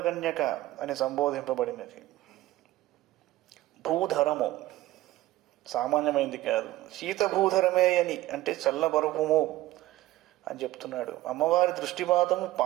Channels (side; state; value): left; quieter; 16.5 dB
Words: కన్యక అని సంబోధింపబడినది. భూధరము సామాన్యమైంది కాదు, శీతభూధరమే అని అంటే చల్లబరుపుము అని చెప్తున్నాడు. అమ్మవారి దృష్టిపాతము